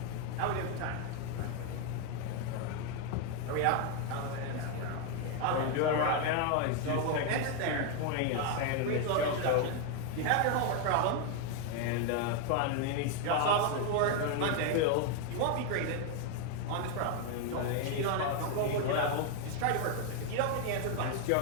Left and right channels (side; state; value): both; different; correlation 0.01